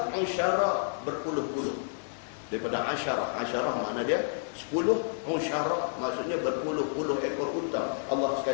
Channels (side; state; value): right; silent; 58 dB below the other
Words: usyara, berpuluh-puluh. Daripada asyarah makna dia 10, usyara maksudnya berpuluh-puluh ekor unta. Allah